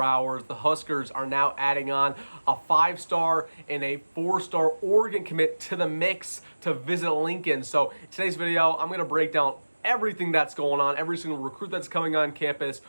hours. The Huskers are now adding on a 5-star and a 4-star Oregon commit to the mix to visit Lincoln. So in today's video, I'm going to break down everything that's going on, every single recruit that's coming on campus,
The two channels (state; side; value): inverted; both; correlation -1.00